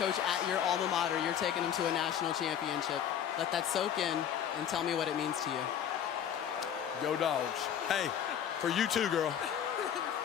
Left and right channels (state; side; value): quieter; right; 9.2 dB